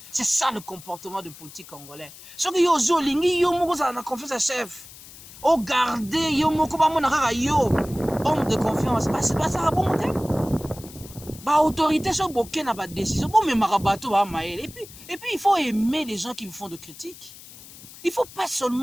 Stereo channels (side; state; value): left; noise; hiss, 18 dB below the sound